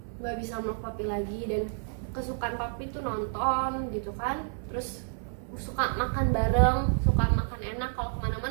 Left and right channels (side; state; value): left; silent; 58 dB below the other